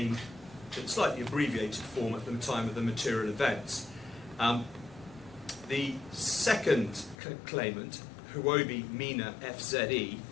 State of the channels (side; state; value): right; drops out; at 7.2 s